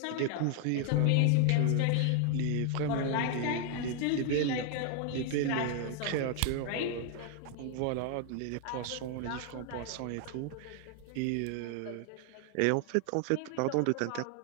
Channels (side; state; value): both; different; correlation 0.00